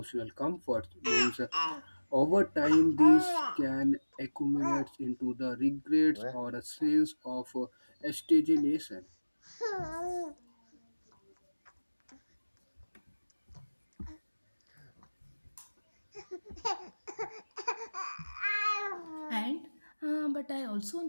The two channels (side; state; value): both; inverted; correlation -1.00